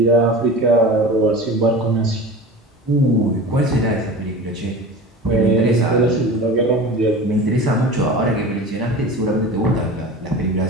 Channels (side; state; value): both; normal; correlation 0.34